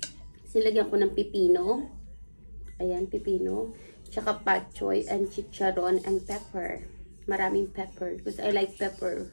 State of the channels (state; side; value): inverted; both; correlation -1.00